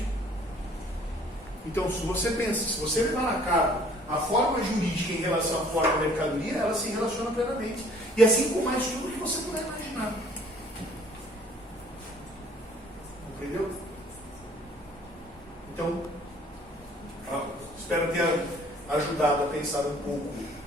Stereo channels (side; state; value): both; normal; correlation 0.57